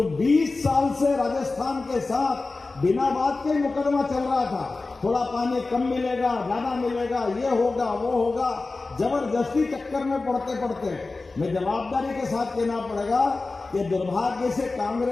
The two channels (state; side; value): quieter; right; 3.6 dB